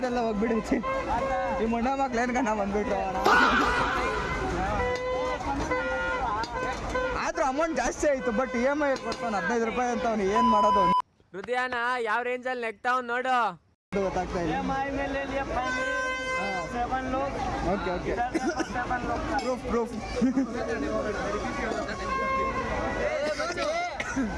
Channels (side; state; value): both; identical; correlation 1.00